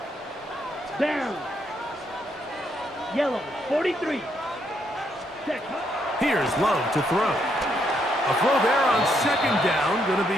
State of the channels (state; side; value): normal; both; correlation 0.75